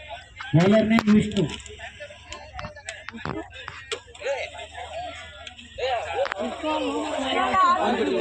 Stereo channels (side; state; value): both; identical; correlation 1.00